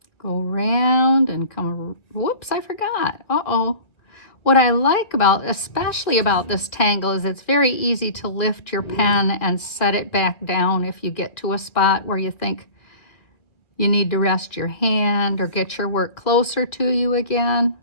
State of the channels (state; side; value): late; right; 2.0 ms